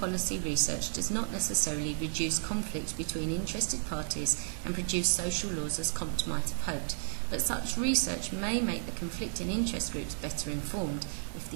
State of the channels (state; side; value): silent; left; digital silence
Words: research does not necessarily reduce conflict between interested parties and produce social laws as Comte might have hoped, but such research may make the conflicting interest groups better informed if